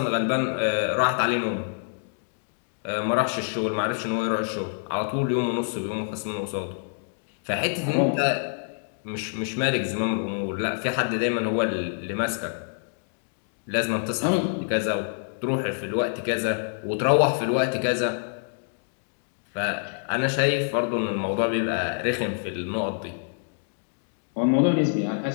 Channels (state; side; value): silent; right; digital silence